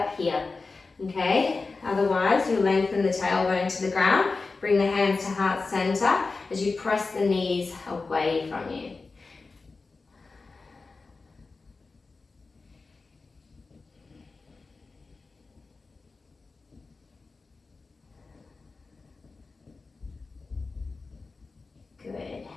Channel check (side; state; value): right; quieter; 4.0 dB